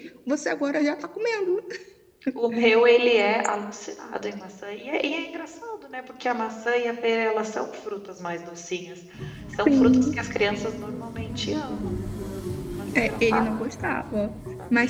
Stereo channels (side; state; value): both; identical; correlation 1.00